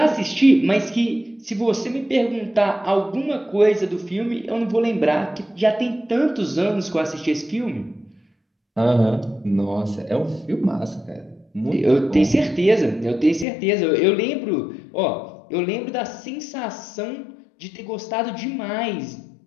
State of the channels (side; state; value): right; drops out; at 13.5 s